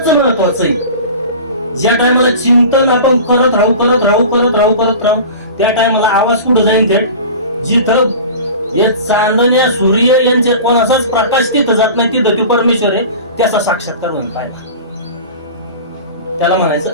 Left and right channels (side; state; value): both; inverted; correlation -0.36